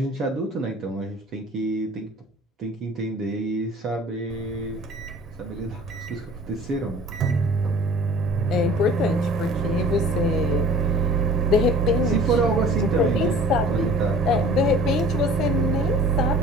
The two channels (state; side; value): normal; both; correlation 0.46